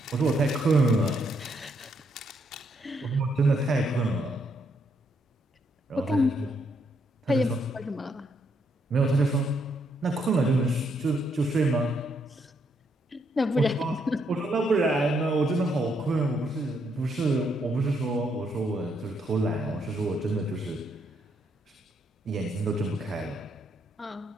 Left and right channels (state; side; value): normal; both; correlation 0.75